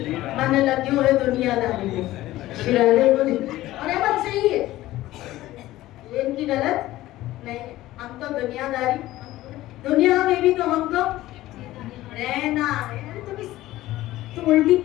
मन लग्यो है दुनियादारी में। श्री राधे बोले, और ये बात सही है, ये इनकी गलत नहीं। हम तो दुनियादारी, दुनिया में भी तो हमको रहना है। तुम उल्टी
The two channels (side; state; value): right; quieter; 16.0 dB